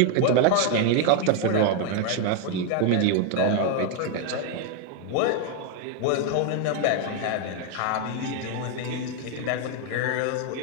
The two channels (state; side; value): different; both; correlation 0.01